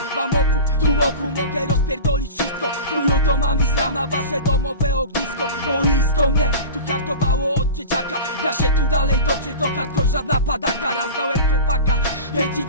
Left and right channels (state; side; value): inverted; both; correlation -0.31